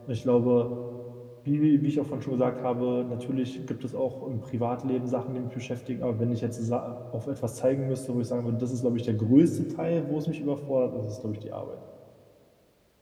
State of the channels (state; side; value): identical; both; correlation 1.00